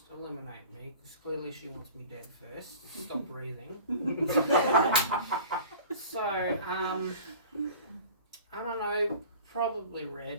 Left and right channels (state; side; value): inverted; both; correlation -0.42